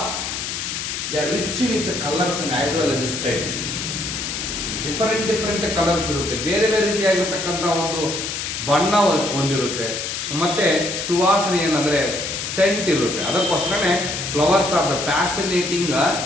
they are rich with the colors and as well as scent. Different colors ಇರುತ್ತೆ, ಬೇರೆ ರೀತಿಯಾಗಿರತಕ್ಕಂತ ಒಂದು ಬಣ್ಣ ಹೊಂದಿರುತ್ತೆ, ಮತ್ತೆ ಸುವಾಸನೆ ಏನಂದ್ರೆ ಸೆಂಟ್ ಇರುತ್ತೆ. ಅದಕ್ಕೋಸ್ಕರನೇ flowers are the fascinating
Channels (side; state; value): left; noise; hiss, 4 dB below the sound